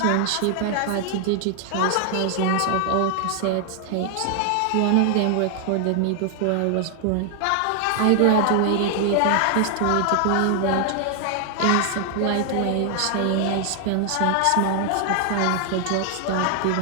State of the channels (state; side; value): different; both; correlation 0.00